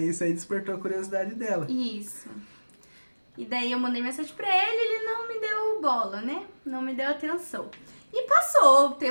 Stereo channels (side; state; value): both; inverted; correlation -1.00